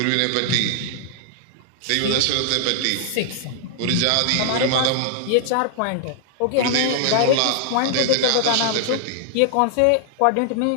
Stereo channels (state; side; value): different; both; correlation -0.01